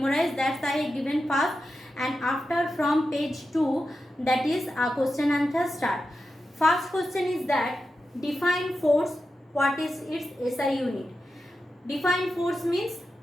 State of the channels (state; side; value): normal; both; correlation 0.90